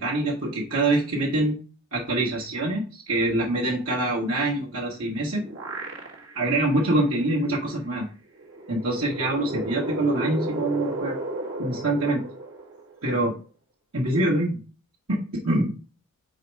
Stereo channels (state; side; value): normal; both; correlation 0.42